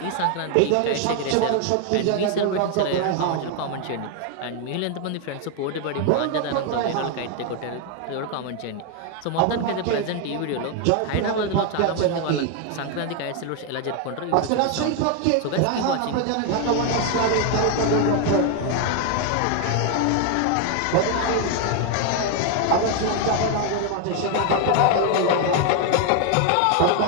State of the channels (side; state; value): both; different; correlation 0.01